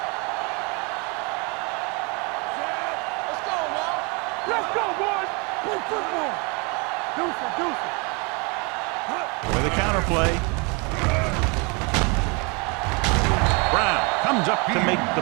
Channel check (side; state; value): left; quieter; 31.1 dB